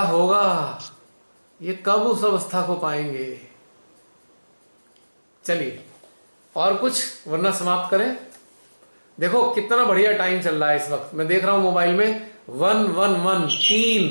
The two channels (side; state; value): both; inverted; correlation -1.00